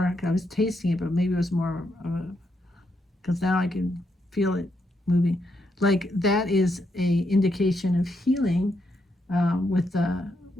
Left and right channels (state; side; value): normal; both; correlation 0.79